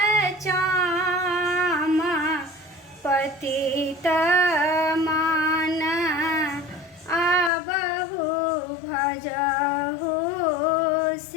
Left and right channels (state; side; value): drops out; right; at 7.5 s